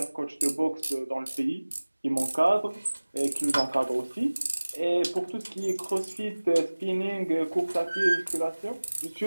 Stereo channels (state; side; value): inverted; both; correlation -1.00